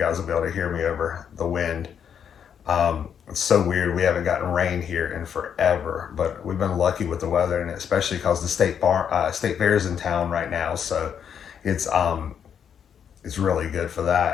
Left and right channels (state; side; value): quieter; right; 8.0 dB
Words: will be able to hear me over the wind. It's so weird. We haven't gotten rain here in forever, but we've been lucky with the weather, and especially because the state fair is in town right now, so it's um, it's really good for